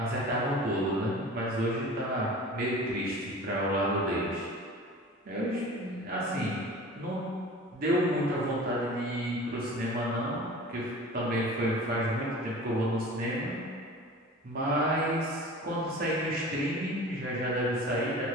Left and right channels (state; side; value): normal; both; correlation 0.39